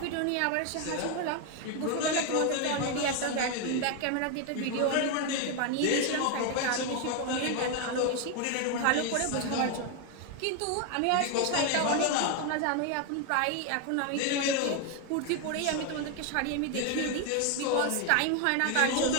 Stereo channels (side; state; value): both; different; correlation 0.01